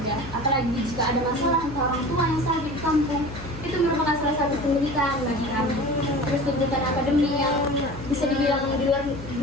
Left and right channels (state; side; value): noise; left; hum, 12 dB below the sound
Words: apalagi jika ada masalah untuk orang tua yang sakit di kampung, itu merupakan salah satu penderitaan bagi kami. Terus tuntutan akademik yang bisa dibilang di